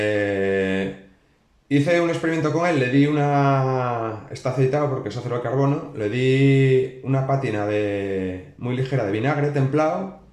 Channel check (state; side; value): identical; both; correlation 1.00